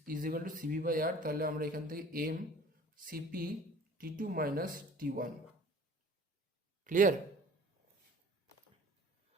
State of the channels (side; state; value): both; normal; correlation 0.48